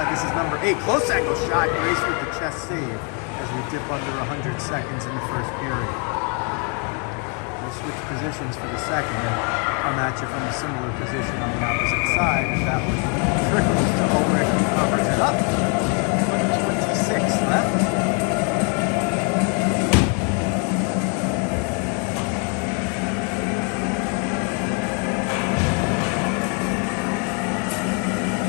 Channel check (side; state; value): right; quieter; 37.6 dB